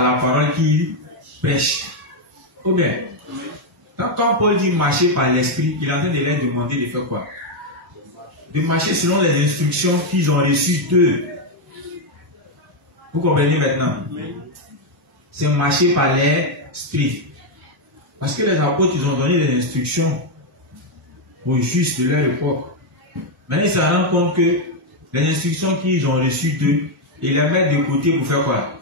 la parole qu'il prêche. Ou bien, quand Paul dit marcher par l'Esprit, il est en train de leur demander de faire quoi? De marcher selon les instructions qu'ils ont reçues d'eux. Vous comprenez maintenant? C'est marcher par l'esprit. Parce que les apôtres, ils ont donné des instructions aux justes de leur époque. Maintenant, ils se rendent compte que les instructions qu'ils ont reçues d'eux, ils les mettent de côté pour faire quoi?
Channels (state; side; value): normal; both; correlation 0.02